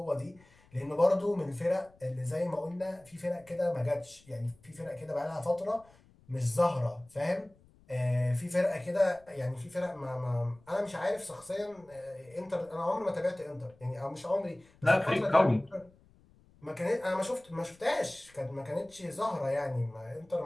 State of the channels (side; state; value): left; noise; rumble, 28 dB below the sound